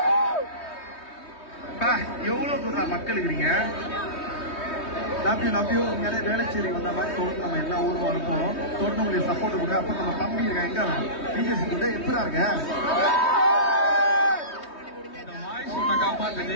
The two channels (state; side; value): late; right; 3.2 ms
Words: எவ்வளவு தூரம் மக்கள் இருக்கிறீங்க. நம்பியோ உண்மையிலே வேலைச்சேரி வந்த மாதிரி தொடர்ந்து நம்ம எல்லா ஊரும் இருப்போம். தொடர்ந்து உங்களுக்கு சப்போர்ட் கொடுங்க. அப்ப நம்ம தம்பி இருக்க எங்க பிஜேசி கூட எப்படா இருக்க